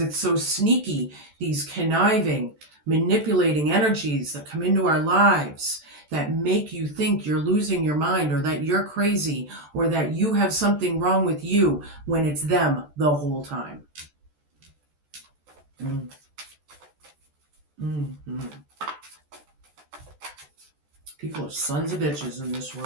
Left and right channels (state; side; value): late; left; 14 ms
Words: it's so sneaky. These conniving, manipulating energies that come into our lives that make you think you're losing your mind, or that you're crazy, or that you have something wrong with you, when it's them the whole time. People are sons of bitches in this